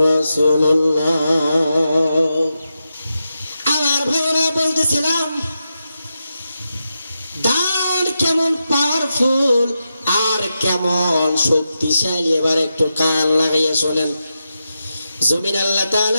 রাসূলুল্লাহ। আমার ভাইরা বলতেছিলাম দান কেমন পাওয়ারফুল আর কেমন শক্তিশালী। এবার একটু কান লাগাইয়া শোনেন। জমিন আল্লাহ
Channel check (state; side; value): inverted; both; correlation -0.88